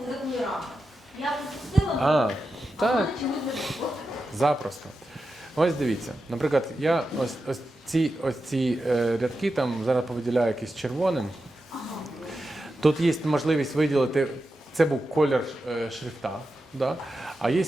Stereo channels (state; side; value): normal; both; correlation 0.90